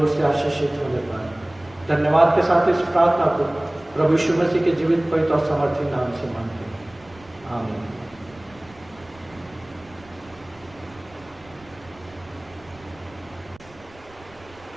से आशीषित होने पाए। धन्यवाद के साथ इस प्रार्थना को प्रभु यीशु मसीह के जीवित, पवित्र और समर्थी नाम से मांगते हैं, आमीन।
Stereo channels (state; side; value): noise; right; rumble, 25 dB below the sound